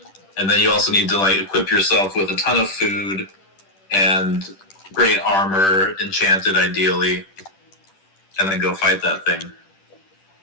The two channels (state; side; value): late; right; 10 ms